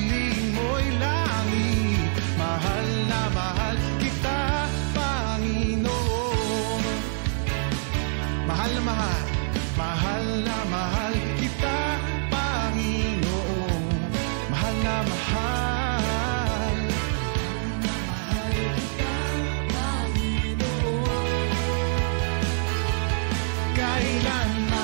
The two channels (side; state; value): left; silent; digital silence